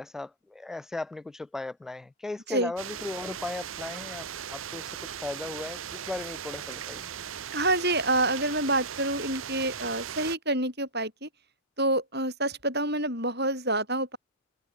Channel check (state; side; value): normal; both; correlation -0.16